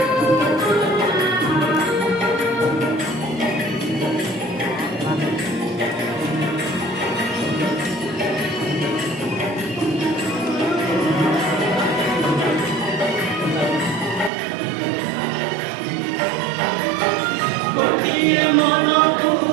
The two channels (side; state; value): left; drops out; at 14.3 s